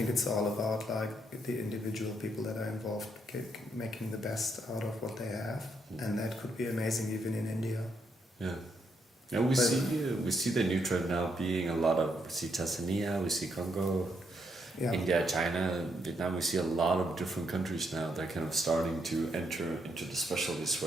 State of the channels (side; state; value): both; normal; correlation 0.76